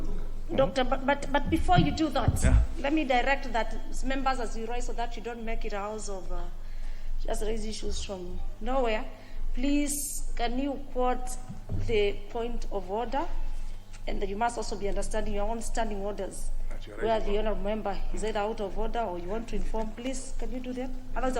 Doctor, but before you do that, let me direct that members as you rise so that you don't make it a house of just raise issues from nowhere. Please, can you quote the point of order? And you must also be understanding your own standing orders. Where the honourable member is either out of order or you want to inform, please, can you do that? Otherwise,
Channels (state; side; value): identical; both; correlation 1.00